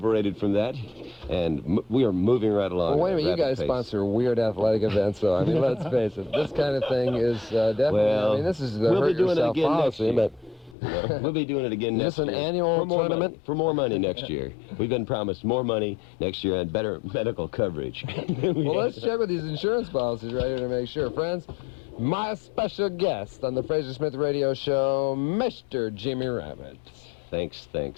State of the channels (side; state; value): right; drops out; at 10.8 s